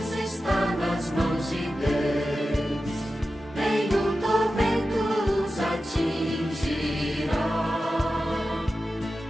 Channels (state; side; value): normal; both; correlation 0.93